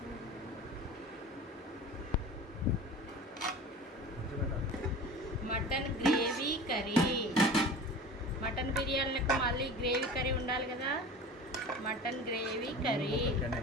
Mutton gravy curry. Mutton బిర్యానీలకు మళ్ళీ గ్రేవీ కర్రీ ఉండాలి కదా. Mutton gravy curry,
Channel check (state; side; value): normal; both; correlation 0.36